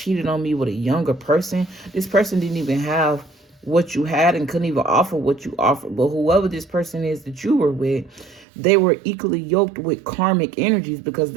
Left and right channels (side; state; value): left; drops out; at 8.5 s